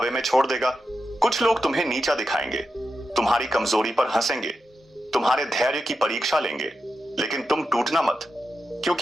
में छोड़ देगा। कुछ लोग तुम्हें नीचा दिखाएंगे, तुम्हारी कमजोरी पर हंसेंगे, तुम्हारे धैर्य की परीक्षा लेंगे, लेकिन तुम टूटना मत,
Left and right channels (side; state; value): both; normal; correlation 0.88